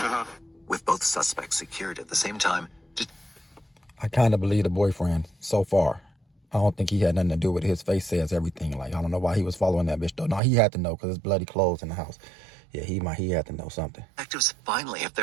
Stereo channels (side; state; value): left; drops out; at 10.4 s